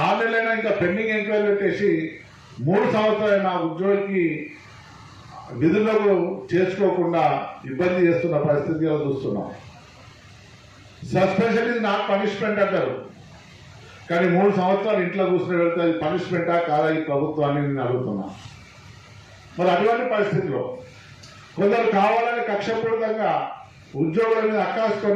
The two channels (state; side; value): identical; both; correlation 1.00